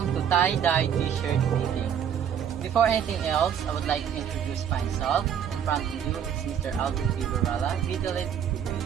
to tie-dye t-shirt making. Before anything else, I would like to introduce myself. In front of you, it's Mr. Alvin Fibarala, Vitalit.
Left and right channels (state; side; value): quieter; left; 8.6 dB